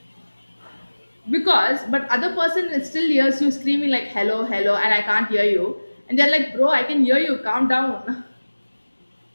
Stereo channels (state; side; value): inverted; both; correlation -1.00